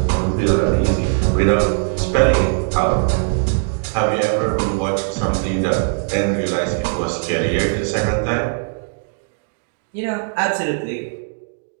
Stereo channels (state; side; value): silent; left; 62 dB below the other